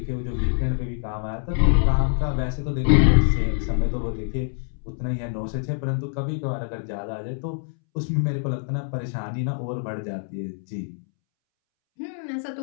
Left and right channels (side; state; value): right; silent; 62 dB below the other